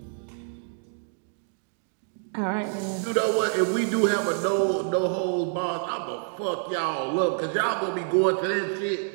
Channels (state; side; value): silent; left; digital silence